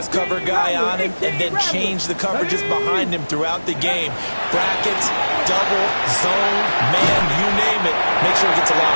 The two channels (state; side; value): inverted; both; correlation -1.00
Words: cover guy on him and then change the coverages behind him throughout the game. Brackets, double, zone, man, you name it. Make sure he gets a lot